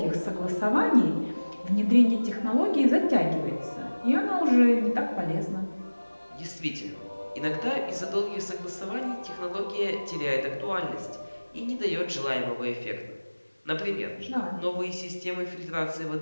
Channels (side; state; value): both; inverted; correlation -1.00